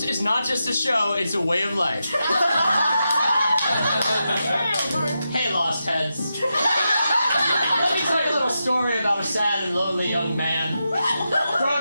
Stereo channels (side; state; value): both; inverted; correlation -0.88